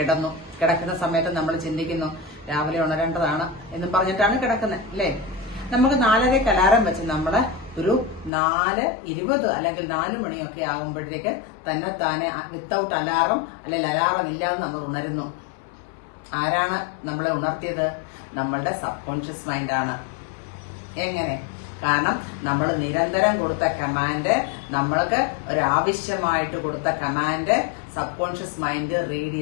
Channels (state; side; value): drops out; right; at 8.3 s